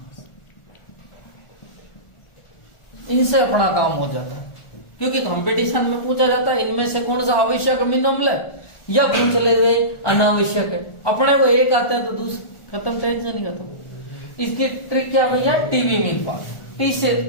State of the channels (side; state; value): right; late; 1.4 ms